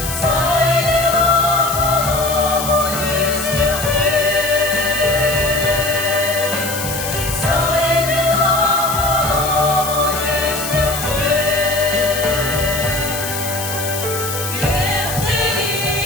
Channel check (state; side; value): noise; left; hiss, 6 dB below the sound